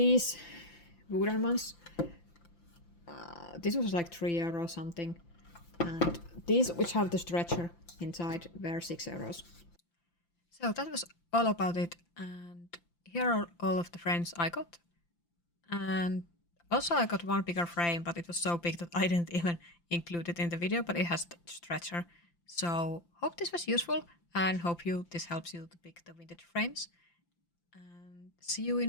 wooden ones, this was like €3 something, and these which have the stretcher inside were €6. So that was all about it, and here are all of the frames I got. And also I got one bigger frame, but it was so big that I didn't even include it in the video, but it has the stretcher. So hope this was useful and hope this helps you to pick the vintage frames. And see you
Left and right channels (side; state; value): right; late; 5.8 ms